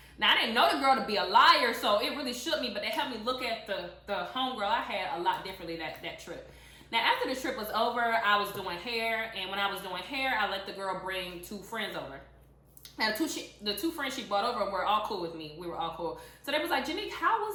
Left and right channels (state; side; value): identical; both; correlation 1.00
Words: Now I didn't know the girl to be a liar, so it really shook me. But they helped me look at the homegirl I had a lot differently that trip. Now, after the trip was over, I was doing hair, and when I was doing hair, I let the girl bring 2 friends over. Now, the two friends she brought over were all cool with me. We were all cool. So they was like, Janique, how